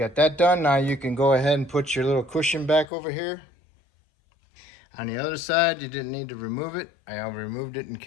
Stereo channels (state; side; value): drops out; right; at 2.9 s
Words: that done, now you can go ahead and put your little cushion back over here. On the other side, you didn't need to remove it. I removed it in